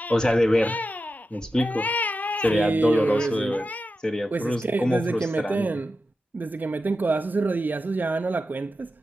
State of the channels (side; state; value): both; normal; correlation 0.90